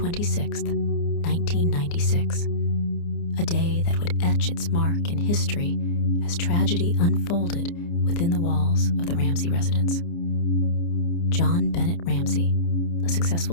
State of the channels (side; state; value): right; late; 29 ms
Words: 1996, a day that would etch its mark in history as tragedy unfolded within the walls of the Ramsey residence. JonBenét Ramsey, a successful